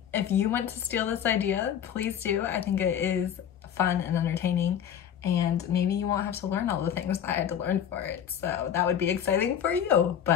If you want to steal this idea, please do. I think it is fun and entertaining, and maybe you won't have to learn all the things that I had to learn for it. So that would be exciting for you.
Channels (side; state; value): right; quieter; 9.1 dB